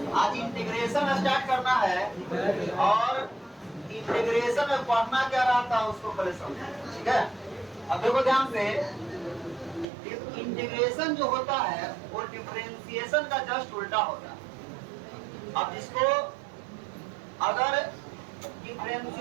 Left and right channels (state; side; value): drops out; left; at 9.9 s